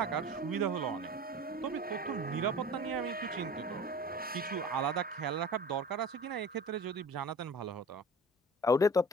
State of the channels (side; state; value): both; normal; correlation 0.39